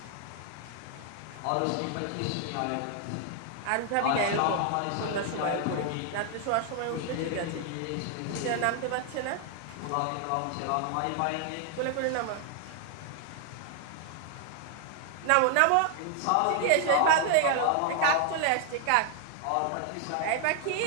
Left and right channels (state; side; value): different; both; correlation 0.00